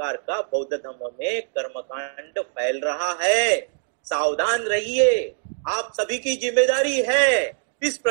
का बौद्ध धर्म में कर्मकांड फैल रहा है, सावधान रहिए, आप सभी की जिम्मेदारी है। इस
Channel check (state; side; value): silent; left; digital silence